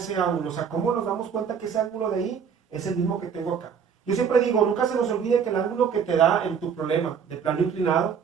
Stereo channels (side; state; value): left; quieter; 7.0 dB